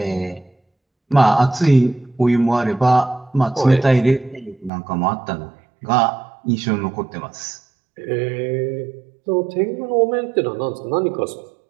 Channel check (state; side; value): drops out; left; at 4.7 s